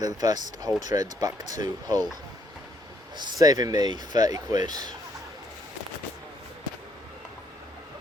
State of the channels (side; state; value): both; normal; correlation 0.70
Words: the first whole train's back to Hull. Saving me 30 quid.